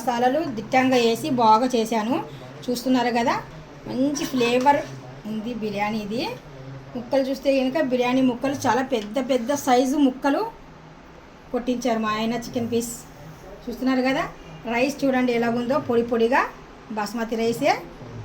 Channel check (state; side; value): identical; both; correlation 1.00